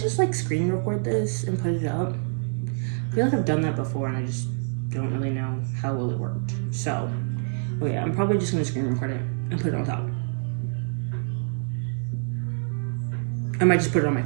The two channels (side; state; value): left; silent; 61 dB below the other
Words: like screen record this and put it up? I feel like I've done that before and I just don't really know how well it worked. So, oh yeah, I'm probably just gonna screen record it and put it on top. I might just put it on my